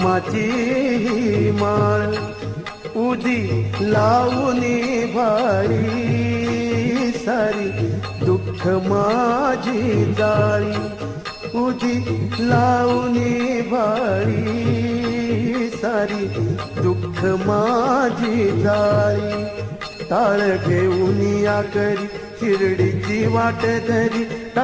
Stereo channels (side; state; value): both; identical; correlation 1.00